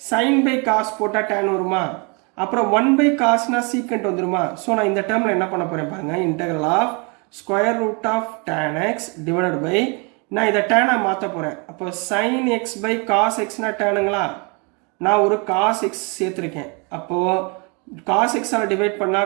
சைன் பை காஸ் போட்டால் டேன் வருமா, அப்புறம் 1/cosனா சீக்கண்ட் வந்துருமா. ஸோ நான் இந்த டேர்மில் என்ன பண்ண போகிறேன் பாருங்கள், integral of square root of tan x divided by, நான் இதை டேனாக மாற்ற போகிறேன். அப்போ sin x by cos x டேனுங்களா, நான் ஒரு காஸ் எக்ஸ் சேர்த்துருக்கேன். அப்போது காஸ் எக்ஸால் டிவைட்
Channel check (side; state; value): left; quieter; 32.6 dB